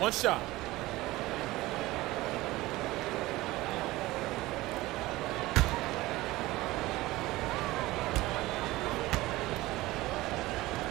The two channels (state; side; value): quieter; left; 18.7 dB